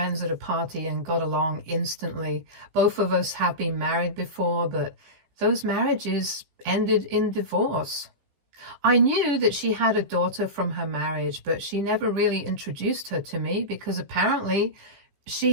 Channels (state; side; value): late; left; 15 ms